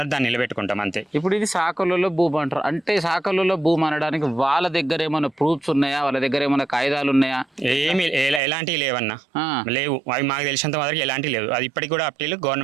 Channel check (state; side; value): drops out; left; at 8.4 s